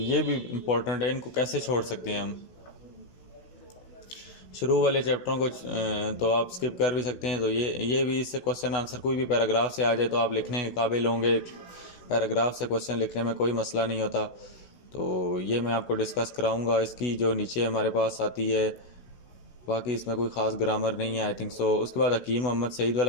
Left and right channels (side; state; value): right; late; 16 ms